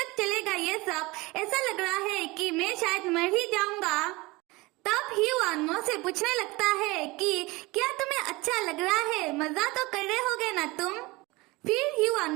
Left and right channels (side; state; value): left; quieter; 22.8 dB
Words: चलेगा ये सब, ऐसा लग रहा है कि मैं शायद मर ही जाऊंगा। तब ही वान मो से पूछने लगता है कि क्या तुम्हें अच्छा लग रहा है, मजा तो कर रहे होगे ना तुम। फिर ही वान